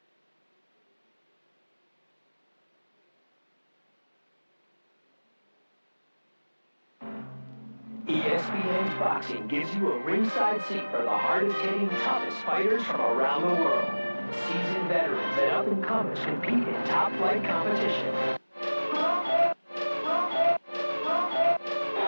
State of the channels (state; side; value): inverted; both; correlation -1.00